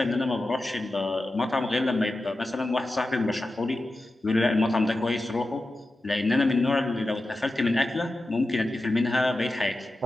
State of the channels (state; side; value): normal; both; correlation 0.93